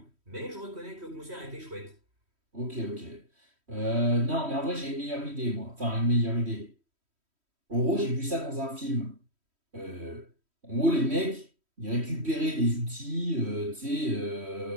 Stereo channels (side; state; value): left; late; 3.1 ms